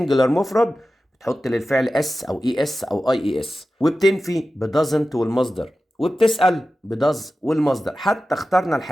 مفرد بتحط للفعل اس او اي اس او اي اس، وبتنفي بدازنت والمصدر، وبتسأل بداز والمصدر. حتى اخترنا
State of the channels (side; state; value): both; normal; correlation 0.94